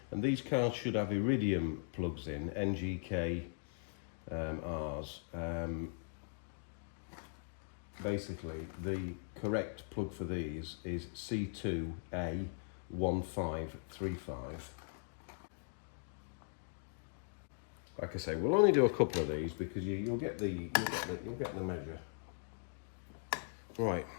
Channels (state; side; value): silent; right; digital silence